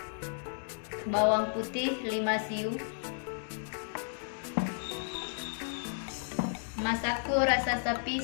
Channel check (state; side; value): silent; right; digital silence